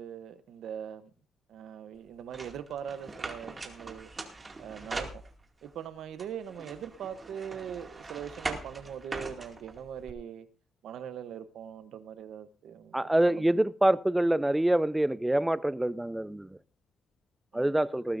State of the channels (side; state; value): both; normal; correlation 0.97